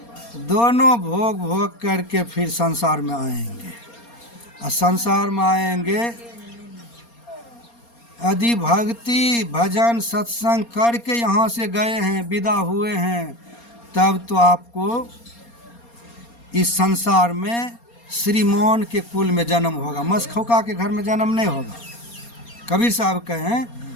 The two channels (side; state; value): right; late; 4.3 ms